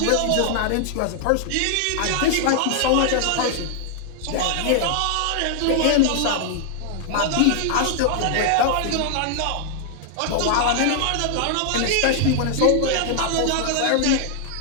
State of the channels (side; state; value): both; different; correlation 0.00